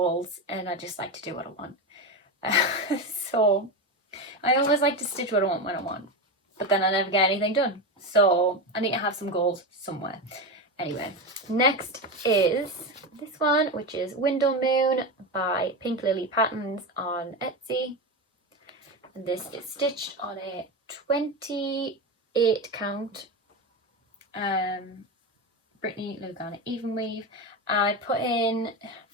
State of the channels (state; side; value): normal; both; correlation 0.17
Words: and I just like to do what I want. So I always like to stitch what I want when I want, but then I never get anything done. So I need to have some goals somewhere. Anyway, next is this one, which is Window Moon by Pink Lily Patterns on Etsy. And this is stitched on a 28 count Brittany Lugana even weave. I put in